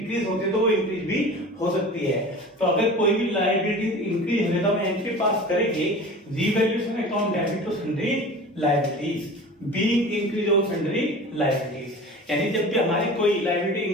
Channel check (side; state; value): both; normal; correlation 0.37